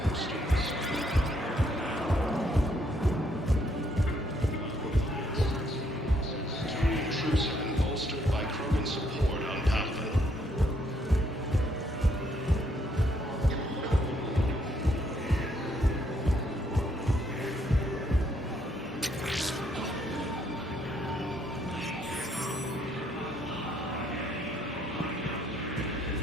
students. Turian troops have been bolstered by Krogan support on Palaven.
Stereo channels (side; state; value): both; normal; correlation 0.71